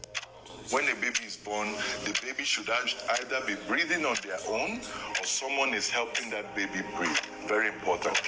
when a baby is born, the baby should either be breathing on their own or someone is helping that baby breathe. Very important.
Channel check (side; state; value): both; identical; correlation 1.00